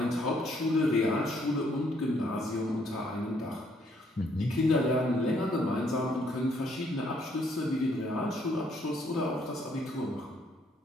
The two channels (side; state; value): both; normal; correlation 0.68